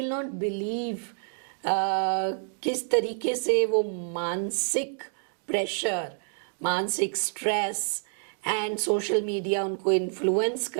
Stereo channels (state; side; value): silent; left; digital silence